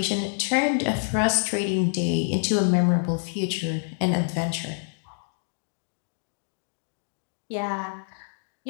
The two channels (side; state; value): right; silent; digital silence